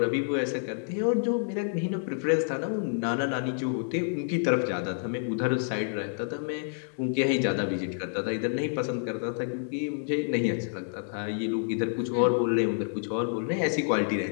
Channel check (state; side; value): silent; right; digital silence